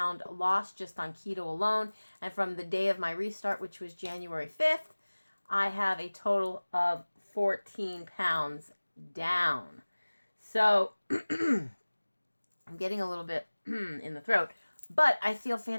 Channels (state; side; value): inverted; both; correlation -1.00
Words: loss just on keto alone. And from the day of my restart, which was January 5th, I have a total of 14 pounds down. So I'm getting a little bit in the throat, but I feel